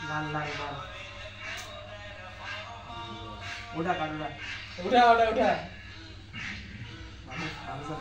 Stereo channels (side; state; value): both; identical; correlation 1.00